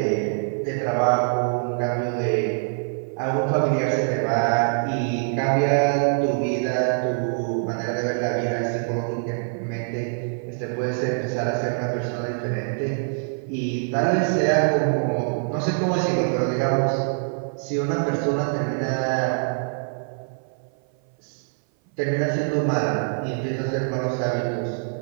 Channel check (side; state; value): left; silent; 57 dB below the other